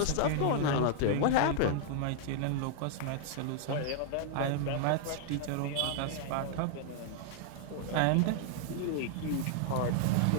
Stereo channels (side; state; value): both; different; correlation 0.00